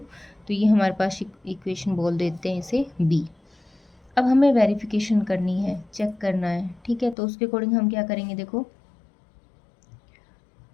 तो ये हमारे पास इक्वेशन बोल देते हैं इसे बी। अब हमें वेरिफिकेशन करनी है, चेक करना है। ठीक है, तो उसके अकॉर्डिंग हम क्या करेंगे, देखो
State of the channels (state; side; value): drops out; right; at 7.2 s